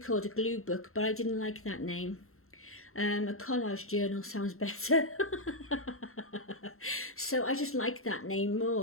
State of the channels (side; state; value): right; late; 0.62 ms